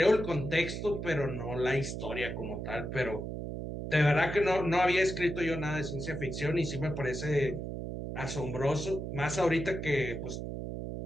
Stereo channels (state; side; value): noise; right; hum, 5 dB below the sound